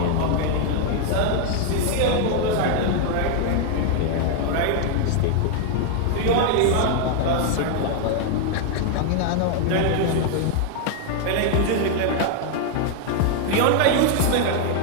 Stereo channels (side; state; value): both; different; correlation 0.00